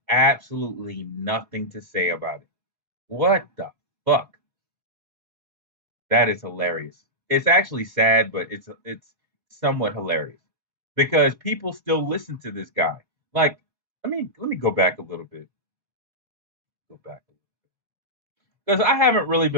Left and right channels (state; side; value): late; left; 2.1 ms